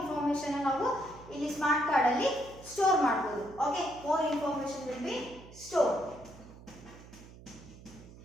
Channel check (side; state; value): right; noise; hum, 18 dB below the sound